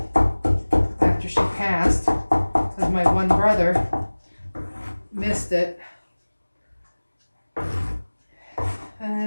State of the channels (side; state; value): both; inverted; correlation -1.00